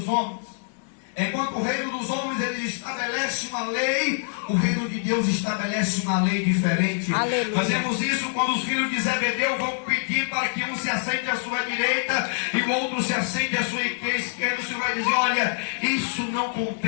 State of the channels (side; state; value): right; silent; 62 dB below the other